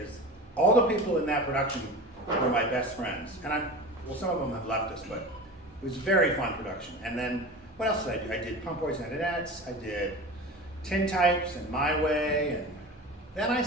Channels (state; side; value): normal; both; correlation 0.32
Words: all the people in that production were my best friends. And some of them have left us, but it was a very fun production. And then, what else did I do? I did Pump Boys and Adettes, I did Tin Types and My Way, and then I